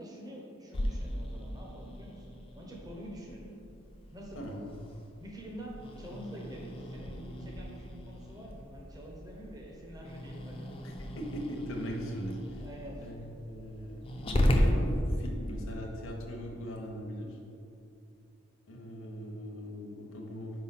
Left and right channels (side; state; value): both; normal; correlation 0.88